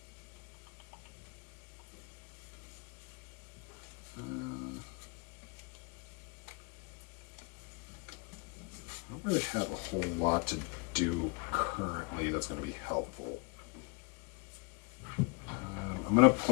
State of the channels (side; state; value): right; quieter; 31.3 dB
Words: I don't really have a whole lot to do currently that's going to be helpful. I'm going to